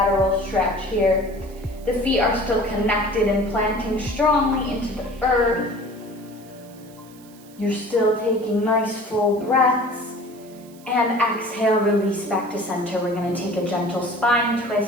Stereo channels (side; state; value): right; noise; hiss, 25 dB below the sound